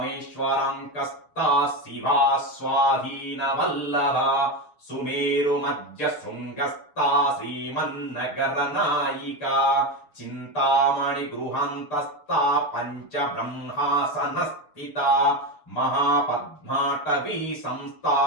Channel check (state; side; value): late; right; 6.6 ms